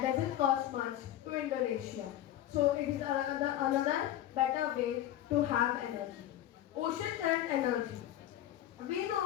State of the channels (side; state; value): right; quieter; 12.5 dB